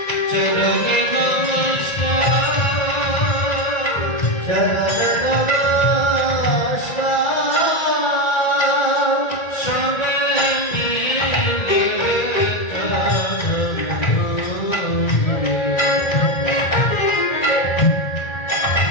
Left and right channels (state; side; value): late; right; 1.4 ms